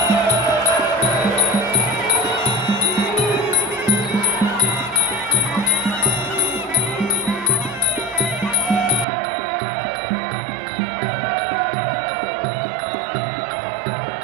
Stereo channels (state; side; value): drops out; left; at 9.1 s